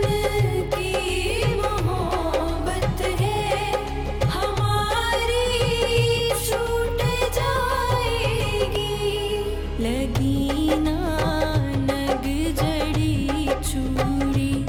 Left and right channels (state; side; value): identical; both; correlation 1.00